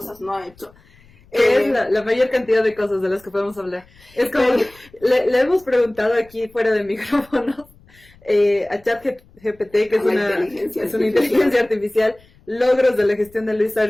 no ha hecho. Es la mayor cantidad de cosas de las que podemos hablar. Es como que le hemos preguntado aquí fuera de micrófonos a ChatGPT, que es una inteligencia artificial, logros de la gestión de Luis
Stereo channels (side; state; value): left; noise; rumble, 28 dB below the sound